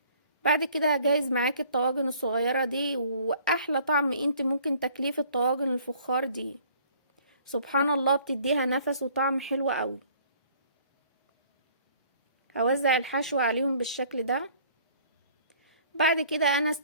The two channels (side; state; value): both; inverted; correlation -0.56